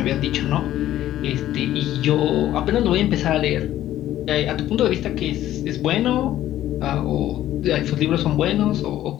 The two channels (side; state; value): right; quieter; 13.1 dB